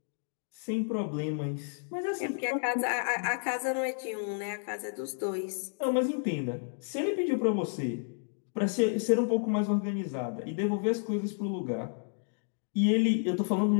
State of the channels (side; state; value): right; silent; digital silence